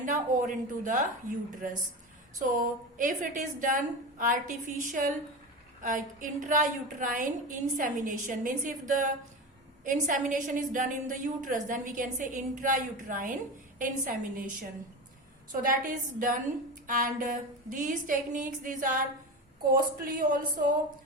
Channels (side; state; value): both; normal; correlation 0.24